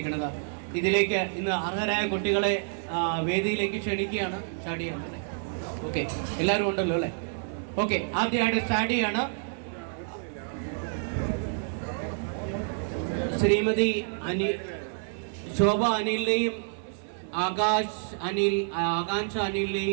ഇതിലേക്ക് ഇന്ന് അർഹരായ കുട്ടികളെ വേദിയിലേക്ക് ക്ഷണിക്കുകയാണ്. സ്റ്റാർട്ട് ചെയ്യണം. ഓക്കെ, എല്ലാവരും ഉണ്ടല്ലോ അല്ലേ? ഓക്കെ, ആദ്യമായിട്ട് സ്റ്റാർട്ട് ചെയ്യാണ് ശ്രീമതി ശോഭ അനിലിനെയും ആകാംക്ഷ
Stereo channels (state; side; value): silent; left; digital silence